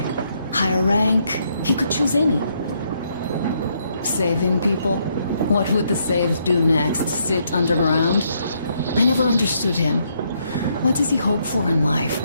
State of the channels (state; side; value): inverted; both; correlation -0.74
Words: Higher rank? He could choose any. Saving people? What would the saved do next? Sit underground? I never understood him. What does he hope for in life?